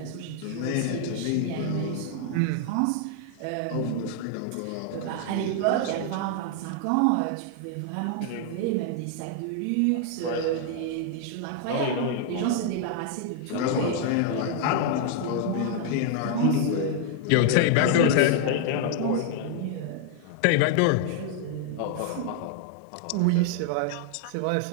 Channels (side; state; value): both; different; correlation 0.00